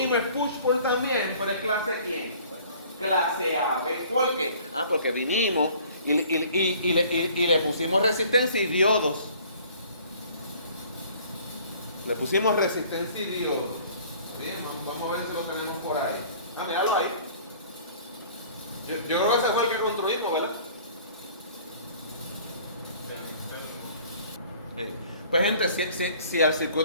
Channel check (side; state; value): both; inverted; correlation -0.52